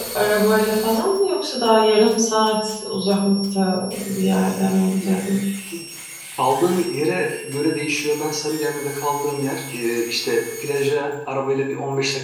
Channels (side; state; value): both; identical; correlation 1.00